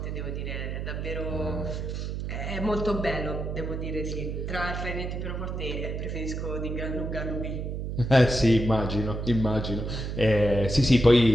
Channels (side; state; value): right; noise; hum, 4 dB below the sound